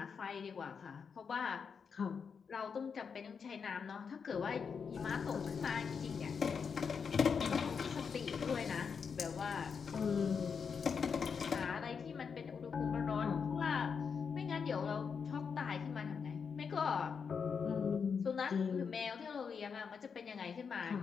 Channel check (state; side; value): quieter; right; 6.1 dB